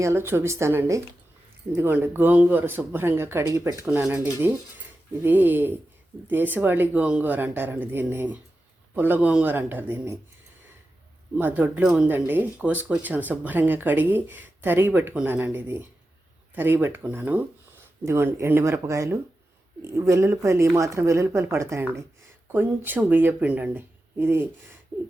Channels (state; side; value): normal; both; correlation 0.91